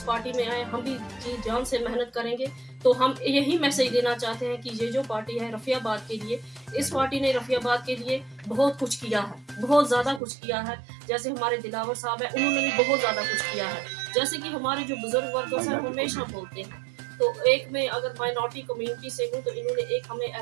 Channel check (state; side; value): drops out; left; at 10.2 s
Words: पार्टी में आए, हम भी जी जान से मेहनत करेंगे। तो हम यही मैसेज देना चाहते हैं कि ये जो पार्टी है रफ़ियाबाद के लिए, इस पार्टी ने रफ़ियाबाद के लिए बहुत कुछ किया है, बहुत ज़्यादा कुछ किया है। जैसे हमारे दिलावर साहब है, उन्होंने भी बहुत ज़्यादा कुछ किया है। जैसे कि हमारे जो बुजुर्ग वर्कर्स हैं हमेशा बोलते हैं, तो एक मैं अगर माइनॉरिटी कम्युनिटी से हूँ तो इन्होंने एक हमें